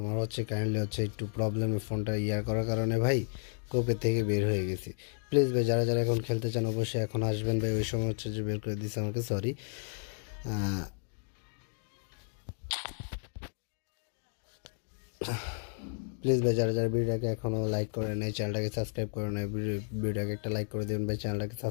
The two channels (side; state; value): right; silent; digital silence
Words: হচ্ছে কাইন্ডলি হচ্ছে একটু প্রবলেমে ফোনটা করার কারণে ভাই কোপের থেকে বের হয়ে গেছি। প্লিজ ভাই, যারা যারা এখন খেলতে চান অবশ্যই এখন আসবেন ভাই, ওই সময় হচ্ছে যে বের করে দিচ্ছে আমাকে, সরি। প্লিজ ভাই যারা যারা ভিডিওটাকে এখনও লাইক করে নেই চ্যানেলটাকে সাবস্ক্রাইব করে নেই ভিডিওটাকে একটা লাইক করে দেবেন ভাই চ্যানেলটাকে